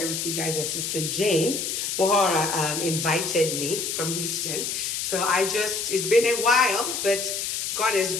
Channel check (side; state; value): left; noise; hiss, 2 dB below the sound